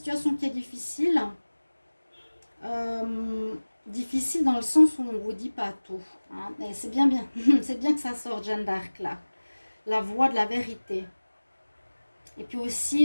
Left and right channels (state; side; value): inverted; both; correlation -1.00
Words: qui est difficile, difficile dans le sens où on ne vous dit pas tout. Hein, et c'est bien, c'est bien que ça sorte, Jeanne d'Arc là, la voix de la vérité. Et puis